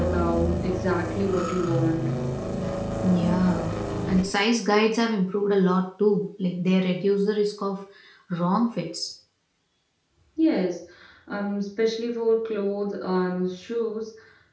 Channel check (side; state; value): both; identical; correlation 1.00